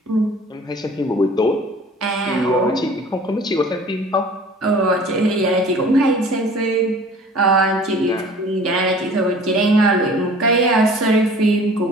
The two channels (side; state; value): both; normal; correlation 0.47